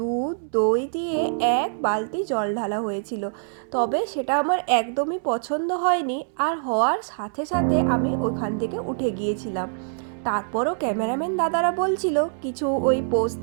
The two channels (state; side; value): silent; left; 62 dB below the other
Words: দই দিয়ে 1 বালতি জল ঢালা হয়েছিল। তবে সেটা আমার একদমই পছন্দ হয়নি, আর হওয়ার সাথে সাথে আমি ওখান থেকে উঠে গিয়েছিলাম। তারপরও ক্যামেরাম্যান দাদারা বলছিল কিছু ওই পোস্ট